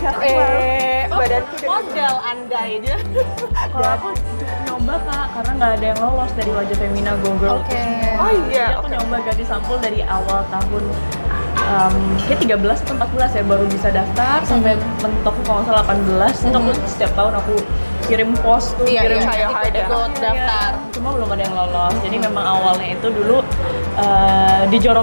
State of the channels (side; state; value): both; inverted; correlation -1.00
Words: badanku udah model andai dia. Kalau aku nyoba kak, karena nggak ada yang lolos dari wajah Femina Go Girl. Oke. Oh iya, Jadi aku nyoba ganti sampul dari awal tahun kayak 13 atau 14 ya baru bisa daftar sampai mentok kalau nggak salah 18. Itu aku setiap tahun aku kirim post tuh, Iya, kirim iya, try hard ya. ikut daftar. Cuma belum ada yang lolos. Jadi memang awalnya itu dulu